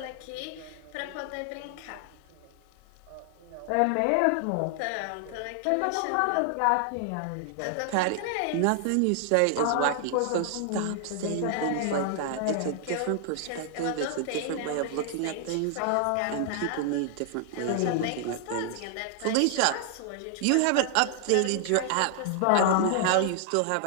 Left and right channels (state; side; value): different; both; correlation 0.00